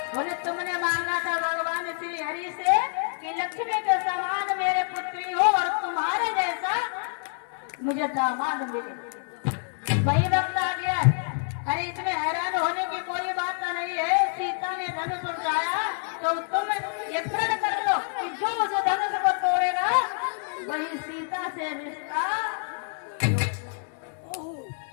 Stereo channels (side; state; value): right; silent; 60 dB below the other